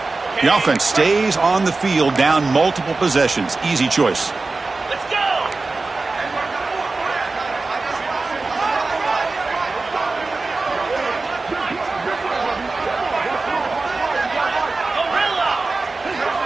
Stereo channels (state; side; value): quieter; left; 3.6 dB